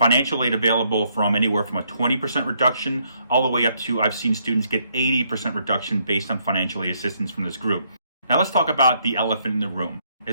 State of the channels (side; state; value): both; inverted; correlation -0.72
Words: aid available from anywhere from a 20% reduction all the way up to, I've seen students get 80% reduction based on financial aid assistance from this group. Now let's talk about the elephant in the room.